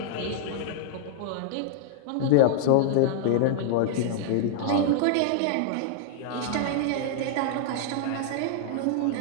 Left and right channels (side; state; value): both; different; correlation -0.01